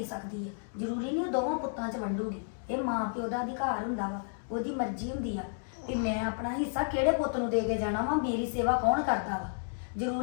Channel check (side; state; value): right; silent; digital silence